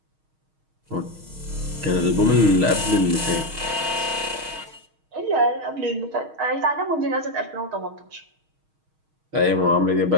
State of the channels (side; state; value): left; late; 6.4 ms